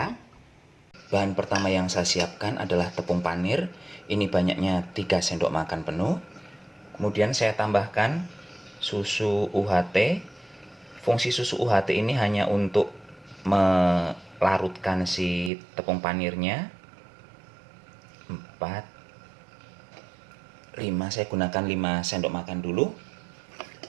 Bahan pertama yang saya siapkan adalah tepung panir. Ini banyaknya 3 sendok makan penuh. Kemudian saya tambahkan susu UHT. Fungsi susu UHT ini hanya untuk melarutkan si tepung panirnya. 4 5, saya gunakan 5 sendok makan dulu.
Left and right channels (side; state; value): left; drops out; at 15.5 s